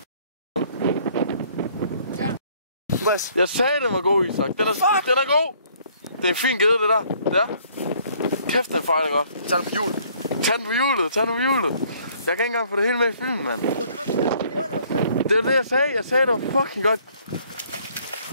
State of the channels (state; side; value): inverted; both; correlation -0.61